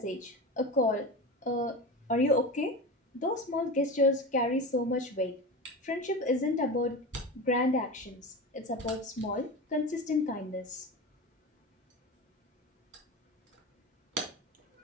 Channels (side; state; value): both; normal; correlation 0.27